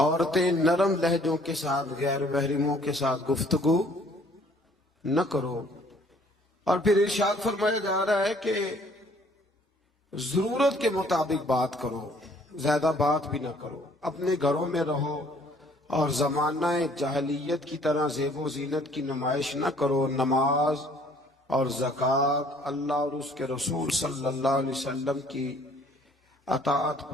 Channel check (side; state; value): both; normal; correlation 0.59